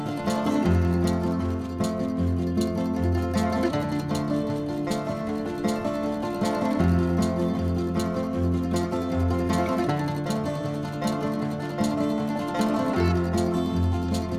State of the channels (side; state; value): both; identical; correlation 1.00